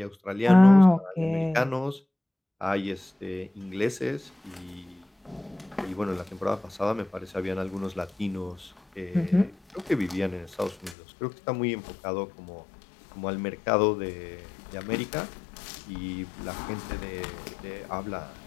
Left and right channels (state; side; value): drops out; right; at 11.0 s